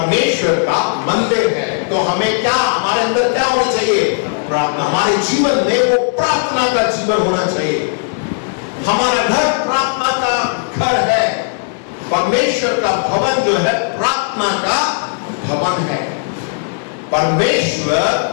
का मंदिर है, तो हमें क्या, हमारे अंदर क्या होना चाहिए? प्रार्थना। हमारे जीवन में वो प्रार्थना का जीवन होना चाहिए। हमारा घर प्रार्थना का घर है। परमेश्वर का भवन जो है प्रार्थना का भवन है।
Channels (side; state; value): right; silent; digital silence